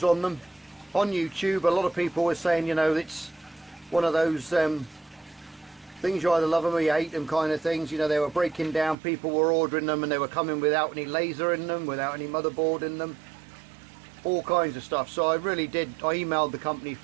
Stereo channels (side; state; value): left; drops out; at 9.0 s